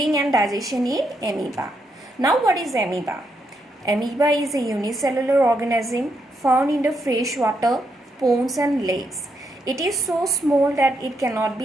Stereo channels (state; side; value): normal; both; correlation 0.79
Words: and digestion in amoeba. Now what is amoeba? Amoeba is a unicellular organism found in the freshwater ponds and lakes. It is so small that it cannot